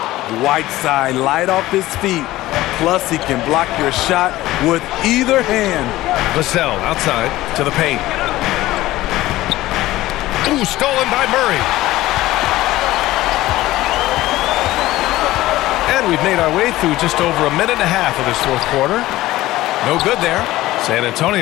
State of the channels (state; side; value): quieter; right; 16.7 dB